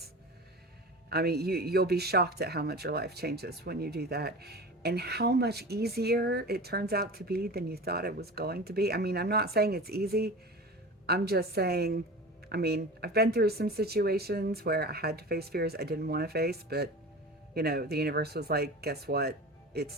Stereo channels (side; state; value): both; normal; correlation 0.33